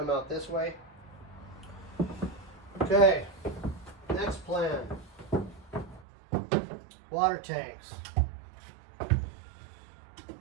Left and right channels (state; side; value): drops out; left; at 6.1 s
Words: out this way. Okay, next plan. water tanks.